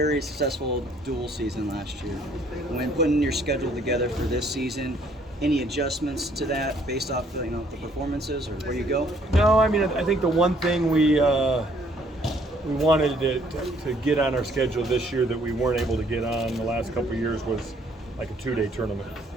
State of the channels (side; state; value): both; normal; correlation 0.63